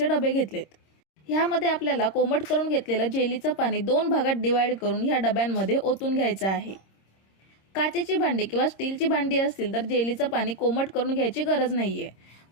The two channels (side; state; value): right; late; 26 ms